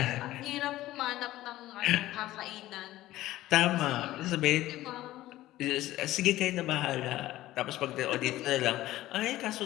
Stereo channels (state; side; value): quieter; right; 15.6 dB